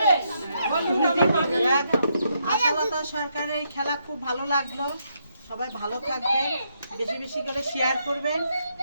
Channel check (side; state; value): both; inverted; correlation -0.77